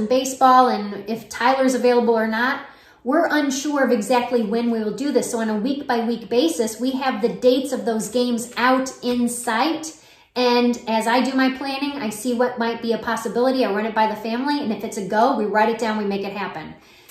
baseball and if Tyler's available or not, we're unsure of exactly when we will do this. So on a week-by-week basis, we have the dates of those games out in sight. And as I do my planning, I see what might be a possibility. I run it by the family, and if it's a go, we write it down, we make it happen.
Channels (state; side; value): identical; both; correlation 1.00